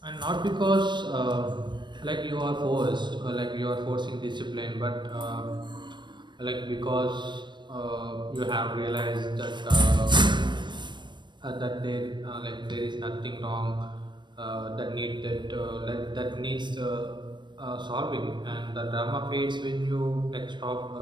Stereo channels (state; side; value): late; left; 0.22 ms